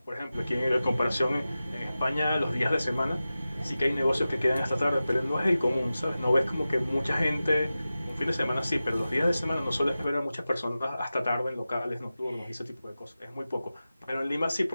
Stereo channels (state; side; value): inverted; both; correlation -0.95